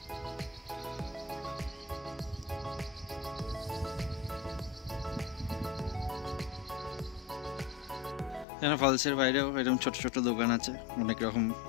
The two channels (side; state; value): right; drops out; at 8.5 s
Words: এখানে ফলসের বাইরেও এরকম ছোট ছোট দোকান আছে,